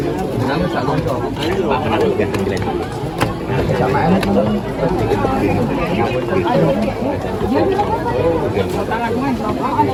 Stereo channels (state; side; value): identical; both; correlation 1.00